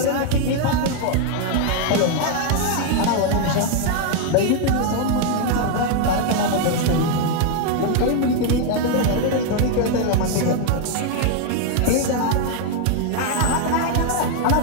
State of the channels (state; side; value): different; both; correlation 0.00